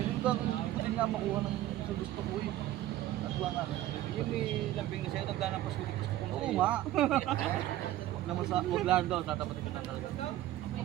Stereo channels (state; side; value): quieter; left; 14.2 dB